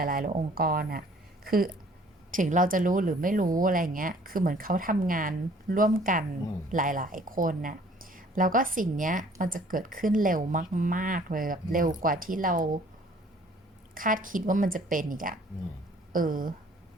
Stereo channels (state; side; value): normal; both; correlation 0.56